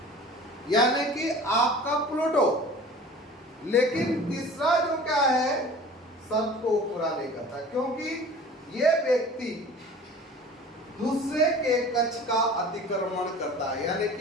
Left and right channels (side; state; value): both; normal; correlation 0.42